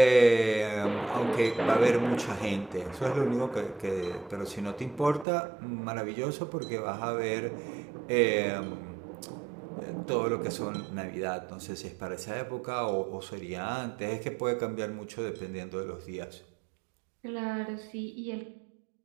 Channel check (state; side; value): drops out; left; at 5.2 s